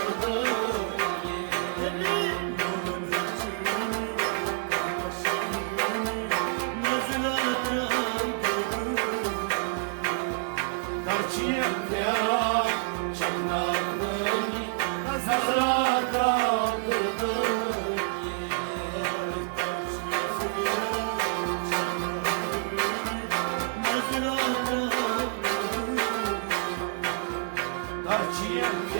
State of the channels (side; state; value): left; silent; 59 dB below the other